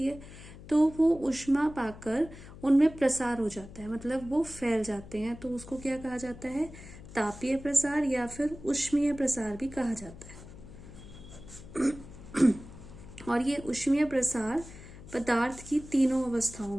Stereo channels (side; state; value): left; noise; hum, 16 dB below the sound